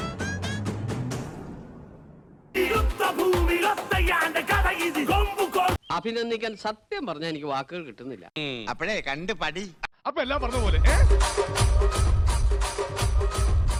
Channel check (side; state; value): both; identical; correlation 1.00